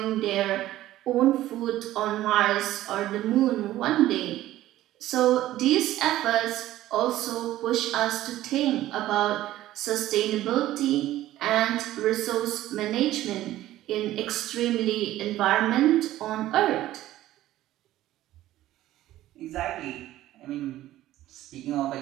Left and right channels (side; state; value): left; quieter; 14.6 dB